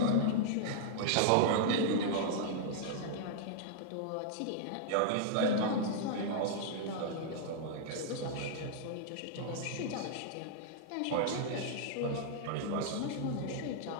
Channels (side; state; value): both; different; correlation -0.01